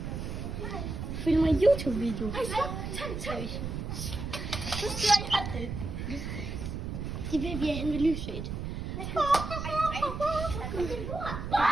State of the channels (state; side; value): noise; right; rumble, 5 dB below the sound